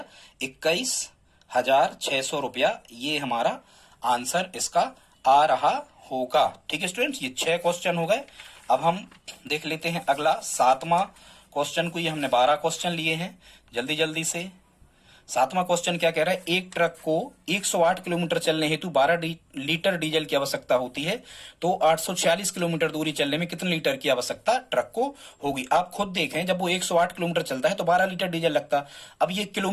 21,600 रुपया। ये हमारा आंसर इसका आ रहा होगा। ठीक है स्टूडेंट्स, ये 6 क्वेश्चन हो गए। अब हम देख लेते हैं अगला 7वां क्वेश्चन को। ये हमने 12 क्वेश्चन लिए हैं, जल्दी जल्दी से। 7वां क्वेश्चन क्या कह रहा है, एक ट्रक को 108 किलोमीटर चलने हेतु 12 लीटर डीजल की आवश्यकता होती है, तो 846 किलोमीटर दूरी चलने में कितने लीटर की आवश्यकता ट्रक को होगी। आप खुद देखें, जब वो 108 किलोमीटर चलता है तो 12 लीटर डीजल लगता। अब ये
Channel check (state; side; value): identical; both; correlation 1.00